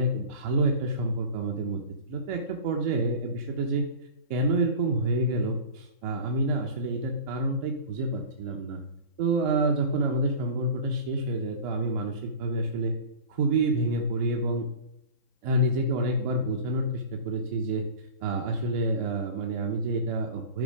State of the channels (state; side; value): late; right; 3.7 ms